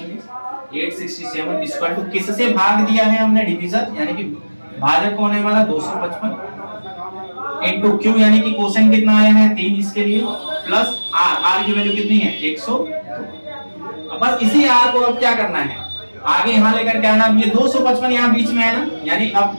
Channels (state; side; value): inverted; both; correlation -1.00